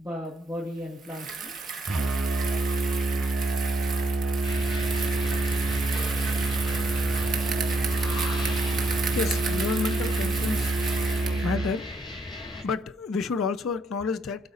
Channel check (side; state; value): both; normal; correlation 0.75